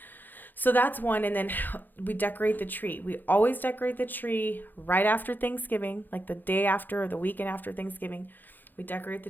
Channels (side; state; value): right; late; 0.088 ms